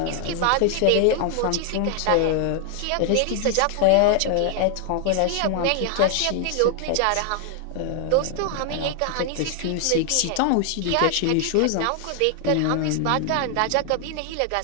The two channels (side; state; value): both; different; correlation 0.00